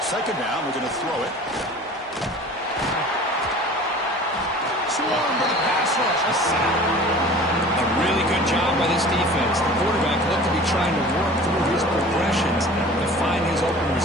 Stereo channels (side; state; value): both; normal; correlation 0.43